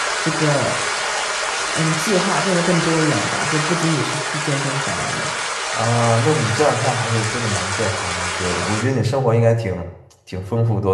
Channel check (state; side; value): identical; both; correlation 1.00